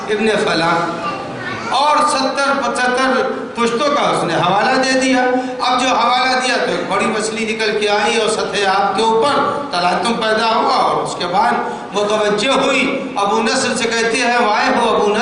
ابن فلاں، اور 70-75 پشتوں کا اس نے حوالہ دے دیا۔ اب جو حوالہ دیا تو ایک بڑی مچھلی نکل کے آئی اور سطح آپ کے اوپر تلاطم پیدا ہوا، اور اس کے بعد متوجہ ہوئی، ابو نصر سے کہتے ہیں وائے ہو ابو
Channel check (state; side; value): identical; both; correlation 1.00